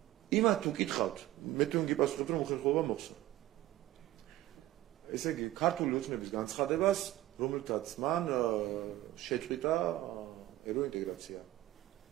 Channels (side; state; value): left; quieter; 15.4 dB